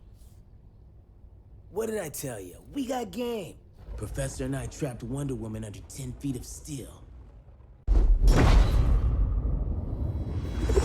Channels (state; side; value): identical; both; correlation 1.00